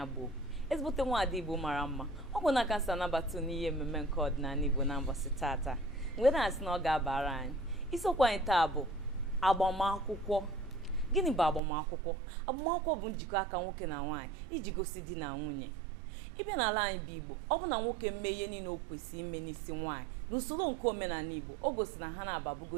ezigbote nwaada Igbo mara mma. Ọ bụ na kansa nabata n'ihe mmemme nke ọdịnala Igbo na mbọsị tata wee na-asị na ọ ga-abara anyị. Isiokwu anyị taa bụ agbamakwụkwọ. Gịnị bụ agbamakwụkwọ? Agbamakwụkwọ bụ njikọ aka nwoke na nwaanyị iji gosi di na nwunye. Ịbịa n'ala anyị bụ Igbo, ọ bụ na nwoke mee ihe niile o kwesịrị ime n'isi nwaanyị n'usoro nke omenala Igbo, o gosi na ha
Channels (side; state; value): left; drops out; at 11.6 s